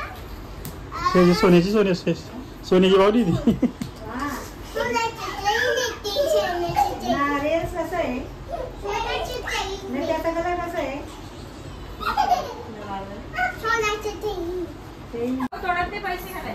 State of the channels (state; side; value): identical; both; correlation 1.00